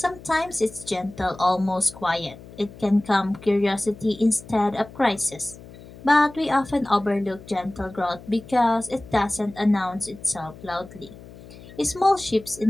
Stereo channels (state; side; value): noise; left; hum, 18 dB below the sound